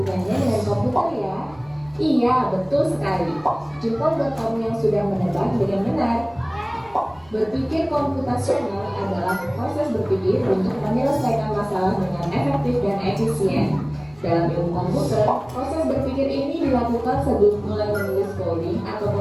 dengan komputer ya? Iya, betul sekali. Jempol buat kamu yang sudah menebak dengan benar. Berpikir komputasional adalah proses berpikir untuk menyelesaikan masalah dengan efektif dan efisien. Dalam ilmu komputer, proses berpikir ini dilakukan sebelum mulai menulis coding atau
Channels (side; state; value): left; noise; rumble, 27 dB below the sound